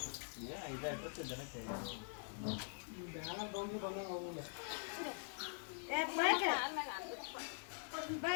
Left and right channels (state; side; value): silent; right; digital silence